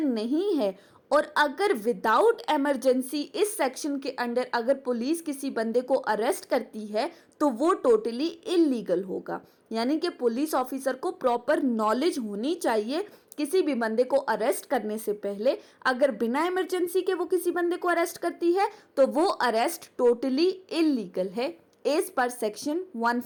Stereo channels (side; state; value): both; identical; correlation 1.00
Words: नहीं है और अगर विदाउट इमरजेंसी इस सेक्शन के अंडर अगर पुलिस किसी बंदे को अरेस्ट करती है तो वो टोटली इल्लीगल होगा, यानी कि पुलिस ऑफिसर को प्रॉपर नॉलेज होनी चाहिए किसी भी बंदे को अरेस्ट करने से पहले। अगर बिना इमरजेंसी के वो किसी बंदे को अरेस्ट करती है तो वो अरेस्ट टोटली इल्लीगल है एज पर सेक्शन